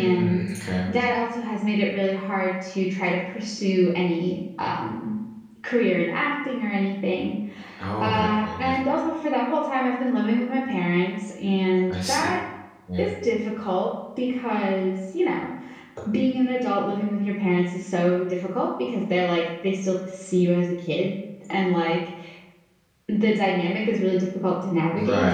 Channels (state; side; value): identical; both; correlation 1.00